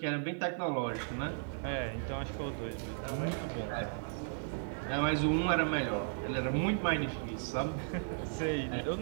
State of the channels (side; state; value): left; silent; digital silence